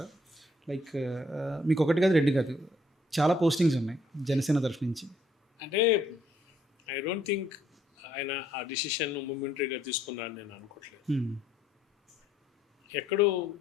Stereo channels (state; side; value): normal; both; correlation 0.67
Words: లైక్ మీకొకటి కాదు, 2 కాదు. చాలా పోస్టింగ్స్ ఉన్నాయి జనసేన తరఫు నుంచి. అంటే ఐ డోంట్ థింక్ ఆయన ఆ డిసిషన్ మొమెంటరీగా తీసుకున్నారని నేను అనుకోవట్లేదు. హ్మ్. ఎక్కడో